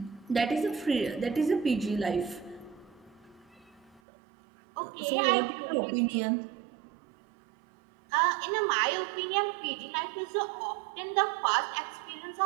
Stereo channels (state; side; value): drops out; left; at 4.0 s